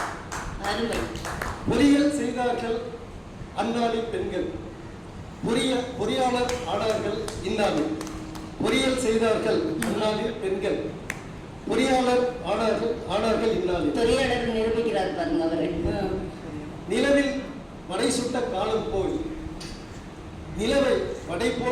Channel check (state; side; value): identical; both; correlation 1.00